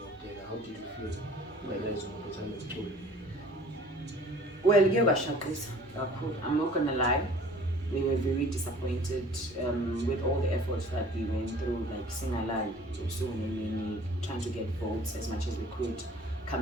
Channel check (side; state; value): both; normal; correlation 0.50